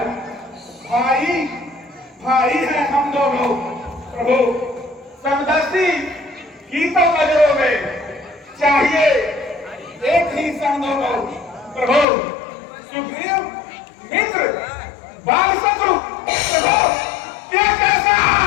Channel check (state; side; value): drops out; right; at 12.1 s